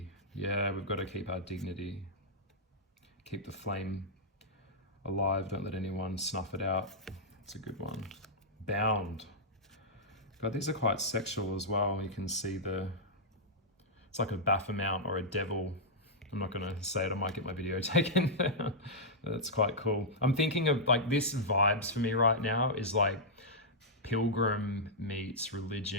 Yeah, we've got to keep our dignity. Keep the flame alive. Don't let anyone snuff it out. It's a good one. Bound. God, these are quite sexual as well. You can see it's like a Baphomet or a devil. I'm not going to say it. I might get my video taken. That's quite cool. I'm thinking of like this vibes for me right now is like pilgrim meets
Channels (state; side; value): normal; both; correlation -0.08